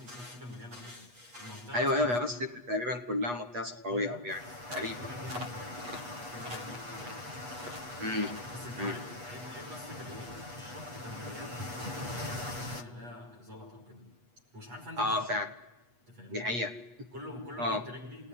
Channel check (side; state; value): left; late; 8.2 ms